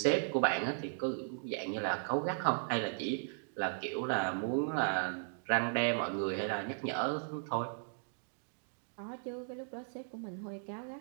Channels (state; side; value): silent; left; digital silence